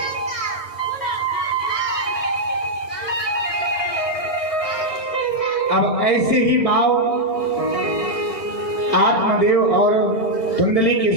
अब ऐसे ही भाव आत्मदेव और धुंधली के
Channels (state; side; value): late; right; 1.6 ms